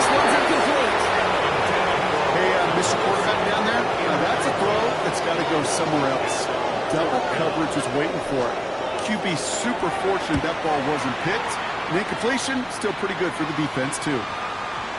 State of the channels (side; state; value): both; identical; correlation 1.00